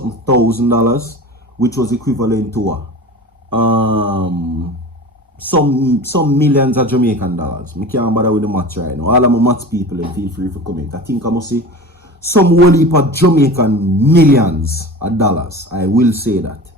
thousand, which was equivalent to some millions of Jamaican dollars. I can't bother with the maths right now. All of my maths people, feel free to comment. I think I must say some whole heap of Jamaican millions of dollars. I will say that.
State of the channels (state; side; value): normal; both; correlation 0.34